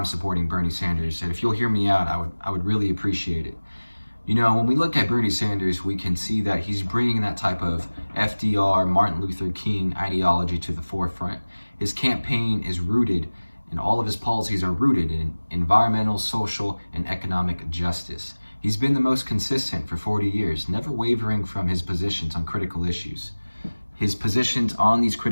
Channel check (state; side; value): inverted; both; correlation -1.00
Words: supporting Bernie Sanders. And if you'll hear me out, I would really appreciate it. You know, when we look at Bernie Sanders, we can see that he's bringing that type of FDR, Martin Luther King ideology to the forefront. His campaign is rooted, and all of his policies are rooted in environmental, social, and economic justice. He's been the most consistent for 40 years, never wavering from his positions on critical issues. His positions on these